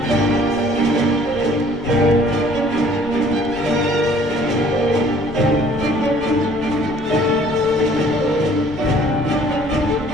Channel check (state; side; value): noise; left; rumble, 16 dB below the sound